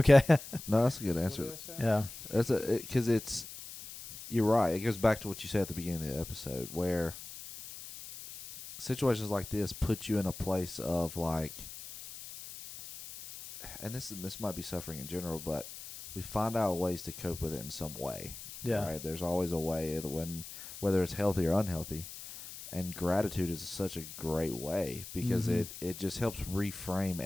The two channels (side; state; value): left; noise; hiss, 12 dB below the sound